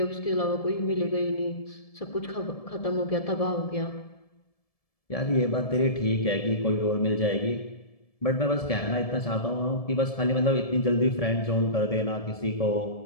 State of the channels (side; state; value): right; late; 1.7 ms